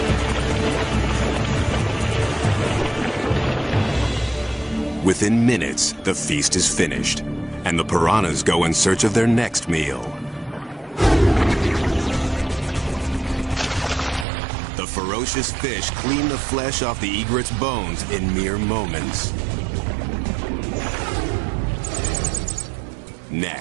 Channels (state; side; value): drops out; left; at 14.2 s